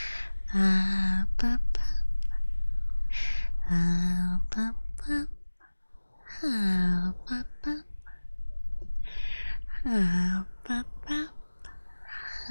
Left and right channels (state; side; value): inverted; both; correlation -1.00